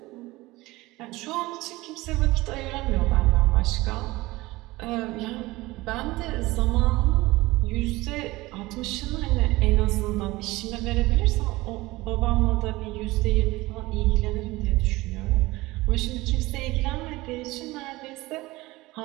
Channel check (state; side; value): quieter; left; 20.0 dB